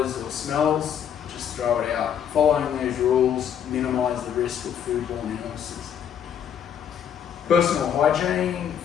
or smells, just throw it out. Following these rules minimise the risk of foodborne illnesses. Personal hygiene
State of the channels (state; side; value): quieter; right; 8.7 dB